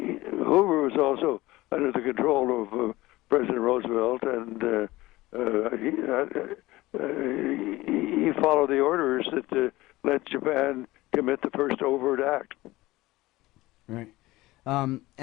was also under the control of President Roosevelt, and he followed the orders that let Japan commit the first overt act. Right.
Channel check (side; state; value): right; quieter; 18.7 dB